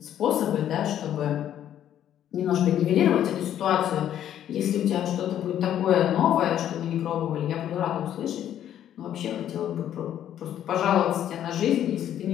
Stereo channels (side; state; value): right; quieter; 10.8 dB